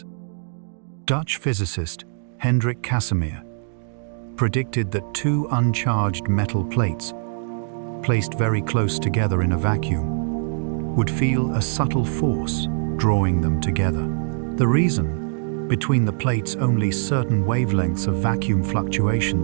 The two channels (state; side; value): silent; left; digital silence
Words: Dutch physicist Hendrik Casimir predicted that two uncharged metal plates, placed very close together in a vacuum, would feel a subtle force drawing them together. The reason? Between the plates only certain wavelengths of vacuum